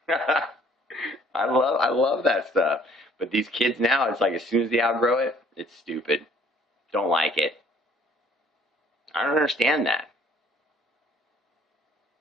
I love that stuff. But these kids now, it's like as soon as they outgrow it, it's stupid. Don't like it. I don't understand that.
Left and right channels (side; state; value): both; normal; correlation 0.58